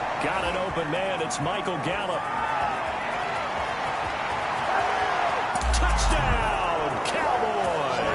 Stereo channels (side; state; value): both; identical; correlation 1.00